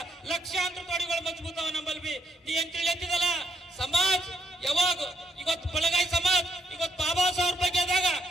ಲಕ್ಷಾಂತರ ತೊಡಿಗಳು ಮಜಬೂತವ ನಮ್ಮಲ್ವಿ. ನೀ ಏನ್ ತಿಳಿಯತ್ತಿದಲ್ಲ ಸಮಾಜ ಯಾವಾಗ ಇವತ್ತು ಬಲಗೈ ಸಮಾಜ ಇವತ್ತು ಬಾಬಾ ಸಾಹೇಬ್ ಬಗ್ಗೆ ಆದಾಗ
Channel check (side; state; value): both; normal; correlation 0.75